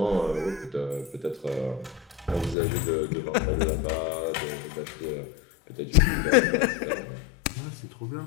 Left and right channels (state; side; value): drops out; right; at 2.6 s